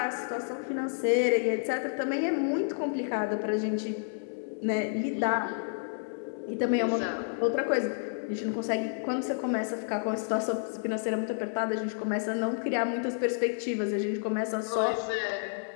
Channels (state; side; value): silent; right; digital silence